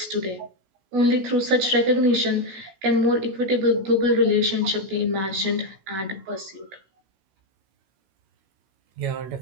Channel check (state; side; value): late; left; 16 ms